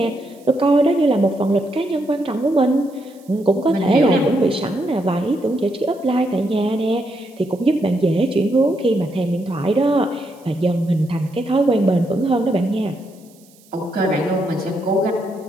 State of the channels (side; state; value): right; noise; hiss, 29 dB below the sound